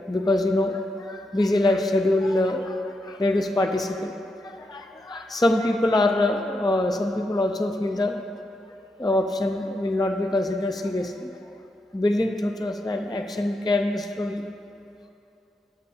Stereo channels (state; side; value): normal; both; correlation 0.83